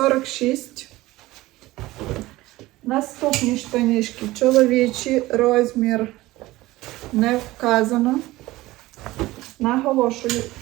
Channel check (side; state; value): left; quieter; 18.3 dB